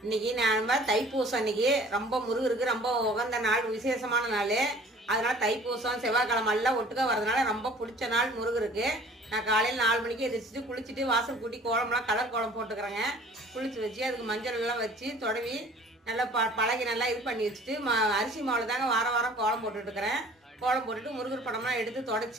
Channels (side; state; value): both; normal; correlation 0.50